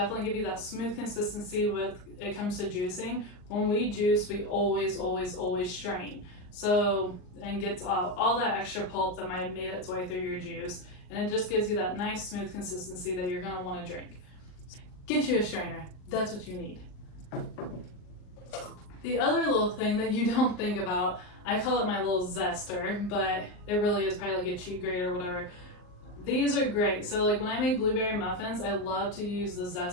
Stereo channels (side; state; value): right; late; 39 ms